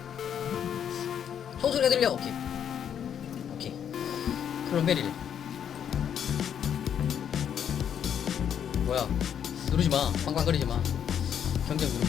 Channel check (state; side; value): quieter; right; 8.7 dB